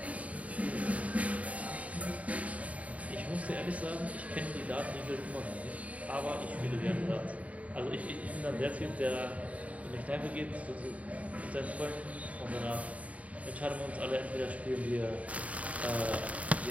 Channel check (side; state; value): left; late; 0.068 ms